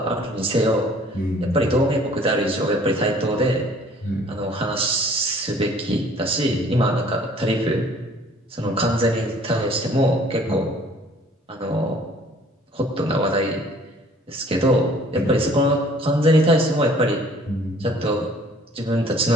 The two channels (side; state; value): both; normal; correlation 0.55